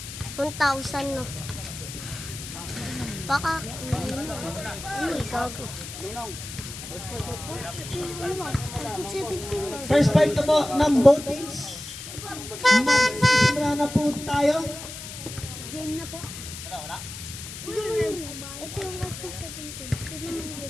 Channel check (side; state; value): left; noise; hiss, 10 dB below the sound